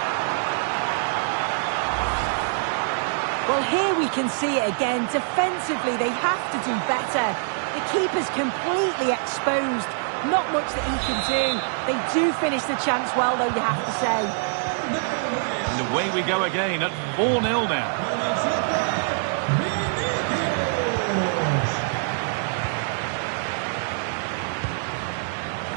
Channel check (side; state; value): left; silent; digital silence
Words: Well, here we can see it again. Defensively, they have to do better. The keeper's completely exposed. Not much that he can do. They do finish the chance well, though, you have to say. And away we go again at 4-0 now.